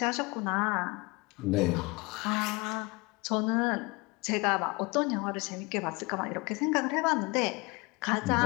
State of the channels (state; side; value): quieter; right; 25.8 dB